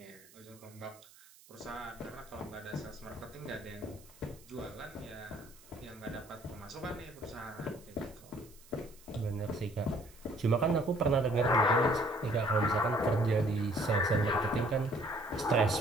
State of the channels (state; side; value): noise; right; hiss, 24 dB below the sound